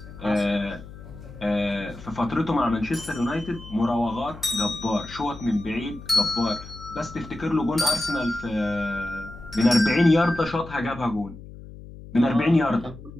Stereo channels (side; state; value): left; noise; hum, 15 dB below the sound